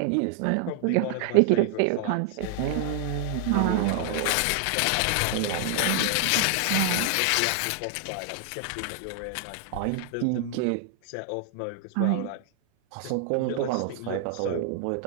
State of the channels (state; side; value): different; both; correlation 0.00